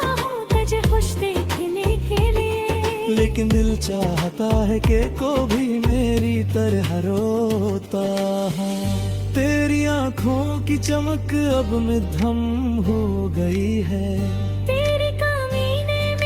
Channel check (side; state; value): both; identical; correlation 1.00